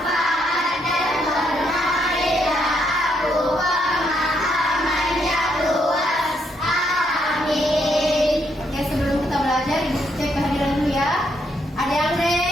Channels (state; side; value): normal; both; correlation 0.75